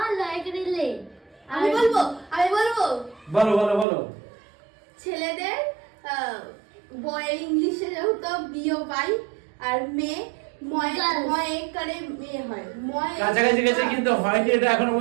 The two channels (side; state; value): left; drops out; at 3.9 s